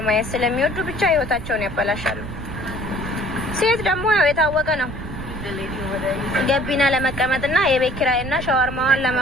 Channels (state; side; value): noise; right; rumble, 9 dB below the sound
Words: ማየት ስለሚወዱ ብቻ ህይወታቸውን ያበላሻሉ። ሴት ደግሞ ያው የታወቀ ነው ገቢና ለመቀመጥና የቤት ኪራይና ሻወርማዋን